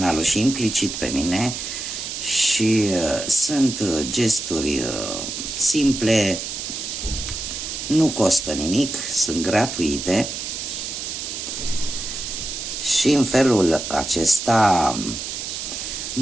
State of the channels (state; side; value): noise; right; hiss, 6 dB below the sound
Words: și implicit pe mine și sunt gesturi simple, nu costă nimic, sunt gratuite și în felul acesta